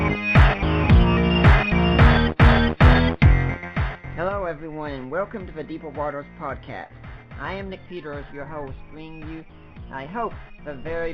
Hello everyone, and welcome to the Deeper Waters podcast. I am Nick Peters, your host, bringing you, I hope, the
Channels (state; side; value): identical; both; correlation 1.00